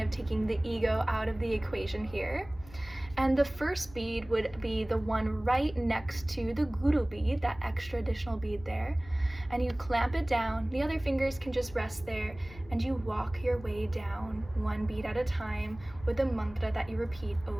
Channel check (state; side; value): noise; left; rumble, 19 dB below the sound